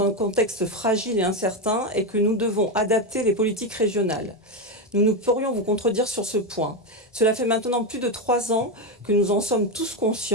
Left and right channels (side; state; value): both; normal; correlation 0.11